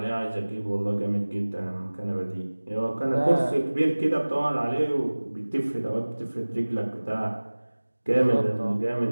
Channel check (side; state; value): both; inverted; correlation -1.00